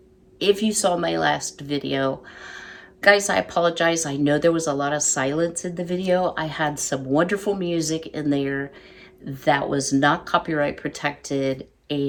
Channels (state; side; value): identical; both; correlation 1.00